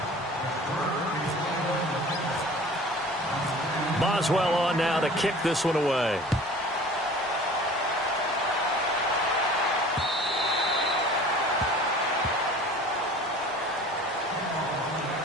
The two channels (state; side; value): normal; both; correlation 0.44